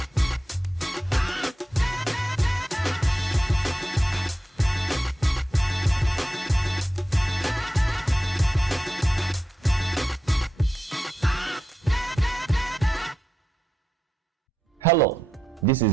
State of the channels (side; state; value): both; normal; correlation 0.87